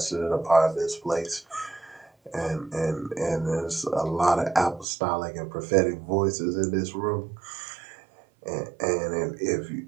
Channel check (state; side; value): drops out; left; at 4.9 s